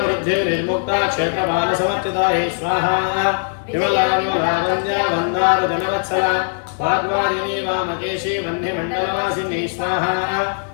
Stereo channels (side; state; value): right; silent; digital silence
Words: क्षेत्रबालसमर्चितायै स्वाहा विमला विमलावन्द्या वन्दारुजनवत्सला वाग्वादिनी वामकेशी वह्निमण्डलवासिनी स्वाहा